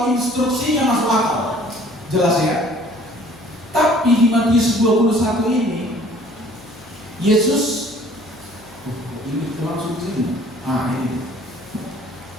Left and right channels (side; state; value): left; noise; hum, 25 dB below the sound